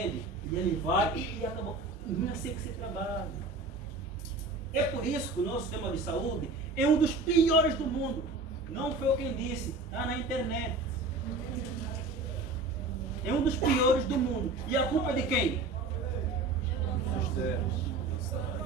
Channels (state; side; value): quieter; left; 3.3 dB